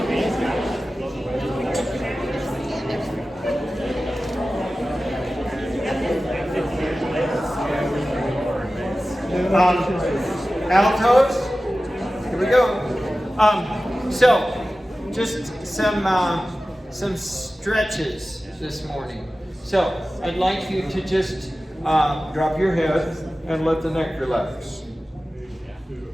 Altos, here we go. So, just some stretches this morning. So, I'd like you to just drop your head and let the neck relax.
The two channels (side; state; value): both; normal; correlation 0.95